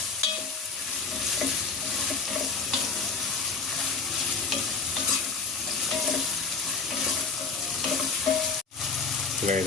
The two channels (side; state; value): right; quieter; 4.7 dB